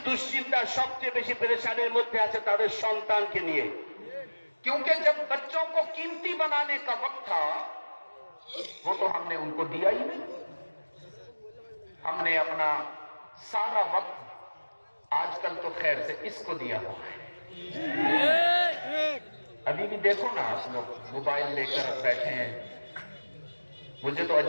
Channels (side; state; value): both; inverted; correlation -1.00